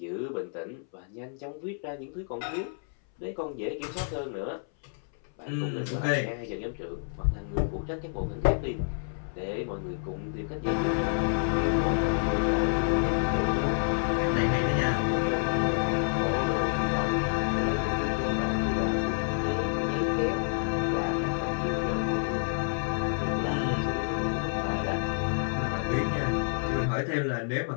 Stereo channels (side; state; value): right; silent; 59 dB below the other